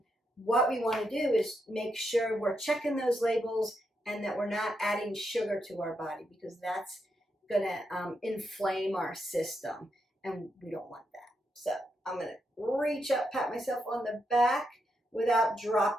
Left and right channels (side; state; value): both; normal; correlation 0.82